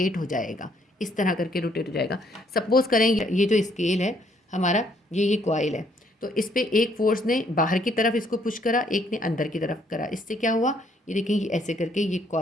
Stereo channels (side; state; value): both; normal; correlation 0.68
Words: हो जाएगा, इस तरह करके रोटेट हो जाएगा। सपोज करें ये जो स्केल है हमारा, ये कॉइल है, तो इस पे एक फोर्स ने बाहर की तरफ इसको पुश करा, एक ने अंदर की तरफ करा। इससे क्या हुआ, ये देखें, ये ऐसे करके ये